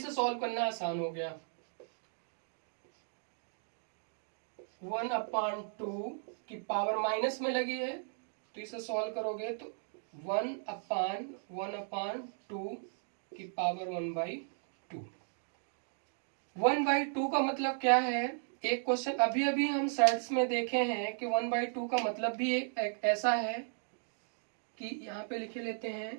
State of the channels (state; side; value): silent; left; digital silence